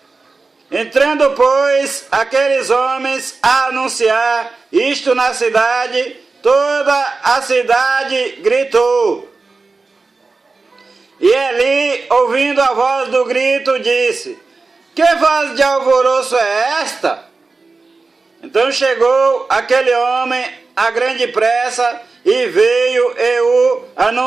Entrando, pois, aqueles homens a anunciar isto na cidade, toda a cidade gritou. E Eli, ouvindo a voz do grito, disse: que voz de alvoroço é esta? Então chegou aquele homem a grande pressa, e veio e o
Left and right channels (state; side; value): quieter; left; 3.9 dB